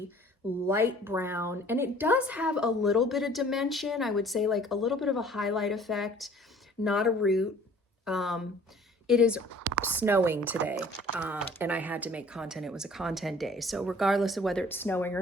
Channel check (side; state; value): both; normal; correlation 0.52